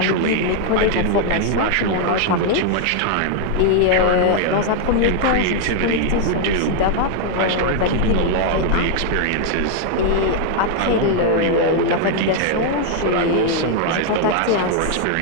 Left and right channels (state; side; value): different; both; correlation 0.00